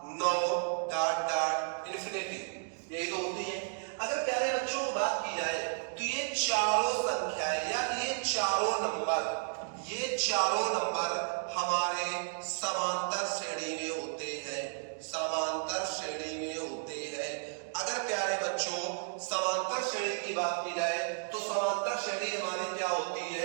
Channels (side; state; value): left; silent; digital silence